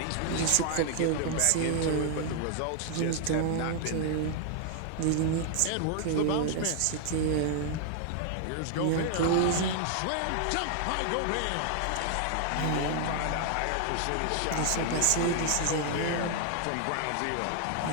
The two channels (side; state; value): both; different; correlation 0.00